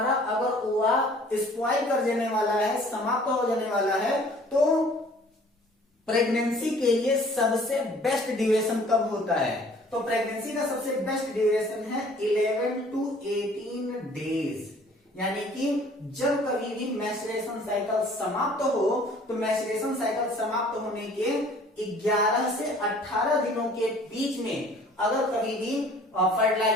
अगर ओवा स्पॉइल कर देने वाला है, समाप्त हो जाने वाला है, तो प्रेगनेंसी के लिए सबसे बेस्ट ड्यूरेशन कब होता है, तो प्रेगनेंसी का सबसे बेस्ट ड्यूरेशन है 11 to 18 डेज। यानी कि जब कभी भी मैच्योरेशन साइकिल समाप्त हो, तो मैच्योरेशन साइकिल समाप्त होने के 11 से 18 दिनों के बीच में अगर कभी भी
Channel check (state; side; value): normal; both; correlation 0.53